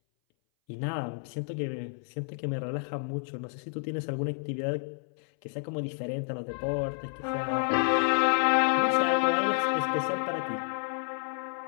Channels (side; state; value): right; silent; 58 dB below the other